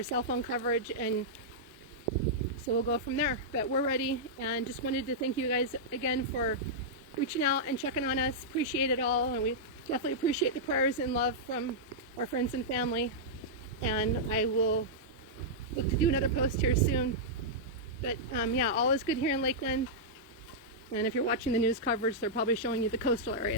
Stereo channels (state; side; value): normal; both; correlation -0.10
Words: cell phone coverage, and so we'll go from there. But we're ready, and just wanted to thank you guys again for reaching out and checking on us. Appreciate it all, and we definitely appreciate the prayers and love from our friends and family. And I will look to do another post here soon. But yeah, all is good here in Lakeland. And if you're watching the news coverage, they're probably showing you the coastal